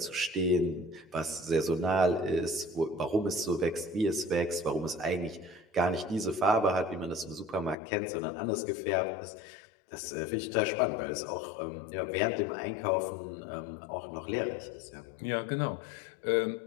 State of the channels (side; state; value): right; drops out; at 7.8 s